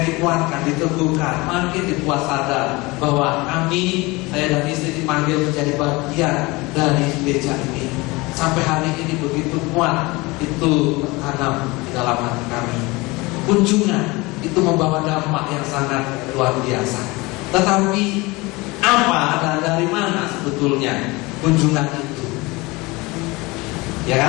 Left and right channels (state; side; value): quieter; right; 23.4 dB